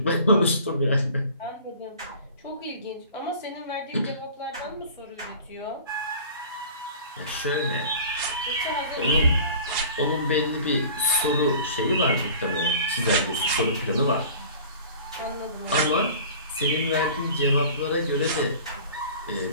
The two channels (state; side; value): inverted; both; correlation -0.43